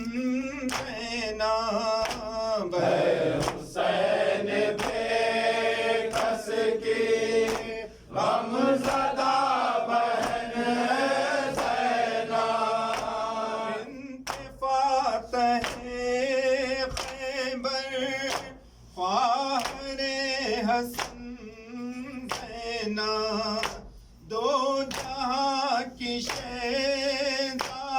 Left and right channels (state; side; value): identical; both; correlation 1.00